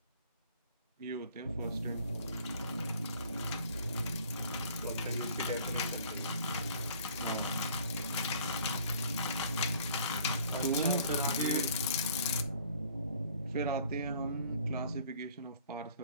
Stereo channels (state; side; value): inverted; both; correlation -0.53